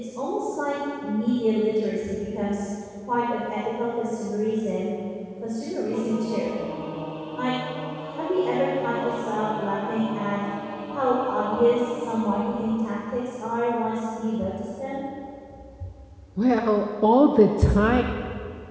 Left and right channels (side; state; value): both; identical; correlation 1.00